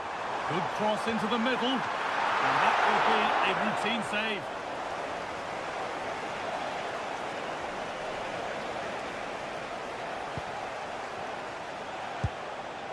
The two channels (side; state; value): both; identical; correlation 1.00